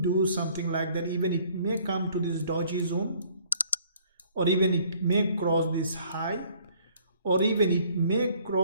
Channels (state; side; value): inverted; both; correlation -0.59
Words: something like that. Even it may come to this doji zone, or even it may cross this high, or even it may